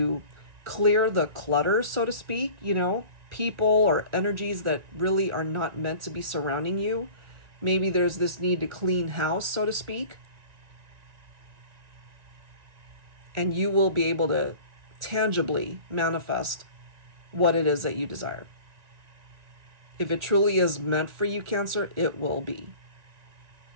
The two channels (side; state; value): left; late; 2.0 ms